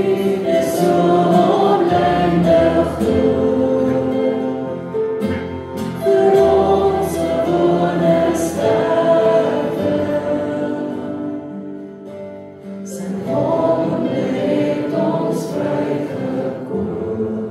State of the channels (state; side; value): identical; both; correlation 1.00